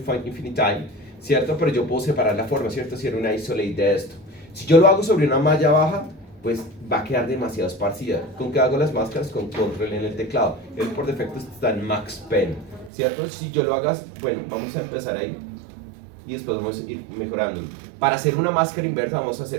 Infinite, ¿cierto? Pero yo puedo separar la forma, ¿cierto? Si era una isolate de esto. Si yo lo hago sobre una malla baja, pues va a quedar demasiado esparcida. ¿Con qué hago las máscaras? Con control en el teclado. Él por defecto está en Max Pen, ¿cierto? Si yo lo hagas, bueno, vamos a empezar ahí y después vamos a ir mejorando. Para hacer una máscara inversa vamos a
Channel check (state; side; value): drops out; left; at 12.9 s